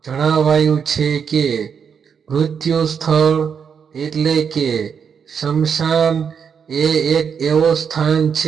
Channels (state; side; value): quieter; left; 6.9 dB